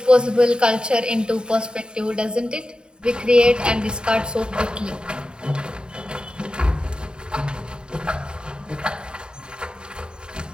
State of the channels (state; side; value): late; left; 0.049 ms